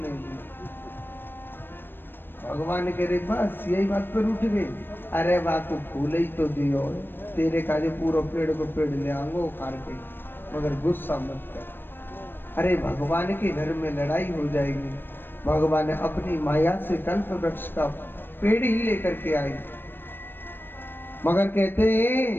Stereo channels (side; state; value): right; late; 0.098 ms